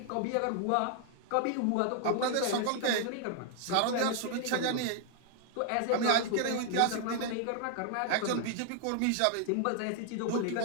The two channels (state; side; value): different; both; correlation 0.00